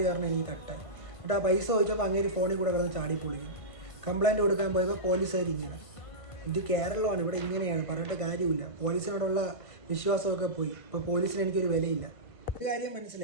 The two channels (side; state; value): right; late; 1.5 ms